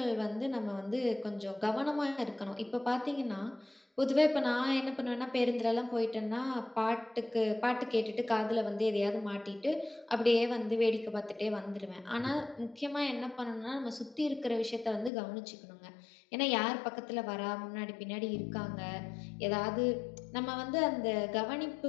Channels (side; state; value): right; drops out; at 15.1 s